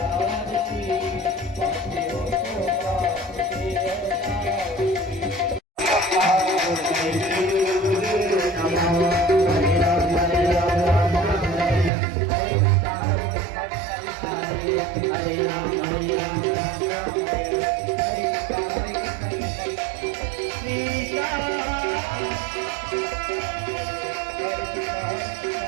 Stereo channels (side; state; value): left; drops out; at 11.9 s